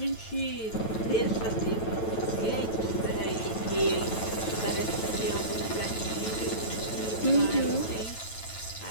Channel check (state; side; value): late; right; 9.1 ms